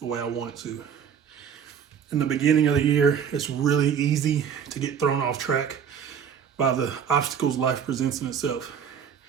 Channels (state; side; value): quieter; left; 7.7 dB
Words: way I want it to. In the beginning of the year, it's really easy to get thrown off track by the obstacles life presents in itself.